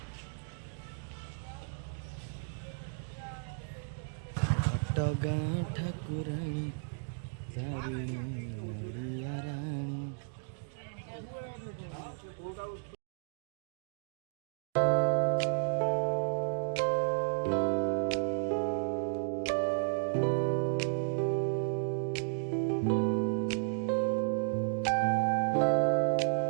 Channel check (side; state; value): left; silent; digital silence